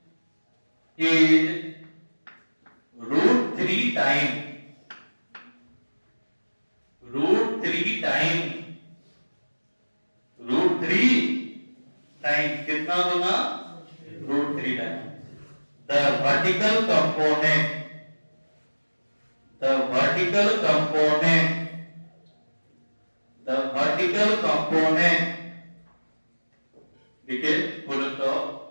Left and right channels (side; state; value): both; inverted; correlation -1.00